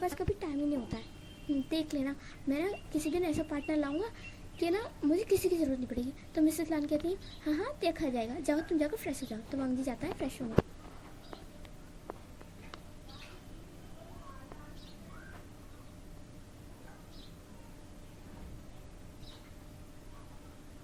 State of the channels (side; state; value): both; identical; correlation 1.00